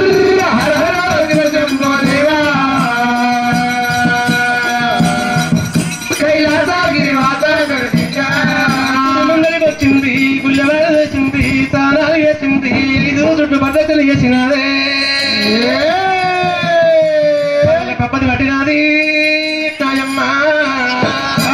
హర హర శివ శంభో దేవ కైలాసగిరి మాతా జగదీశ ముందరికి వచ్చింది గుళ్ళెవాడ వేసింది తానాలు వేసింది 5 చుట్టూ పద్ధతులు వేసినదే పప్పది పట్టినది కాయమ్మ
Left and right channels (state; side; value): identical; both; correlation 1.00